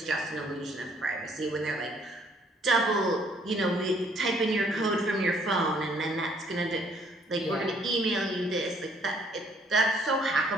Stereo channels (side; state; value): both; normal; correlation 0.64